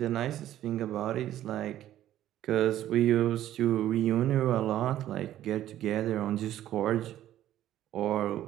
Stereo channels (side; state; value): left; quieter; 12.6 dB